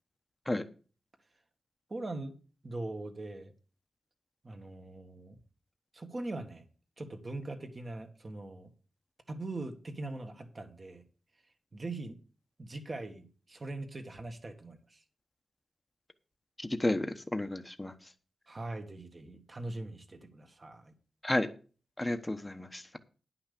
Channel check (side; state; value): both; normal; correlation 0.95